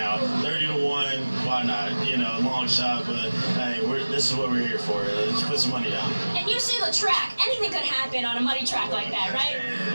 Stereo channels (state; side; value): inverted; both; correlation -1.00